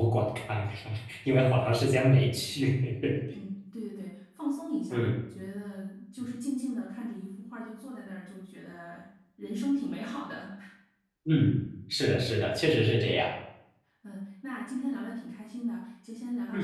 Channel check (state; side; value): identical; both; correlation 1.00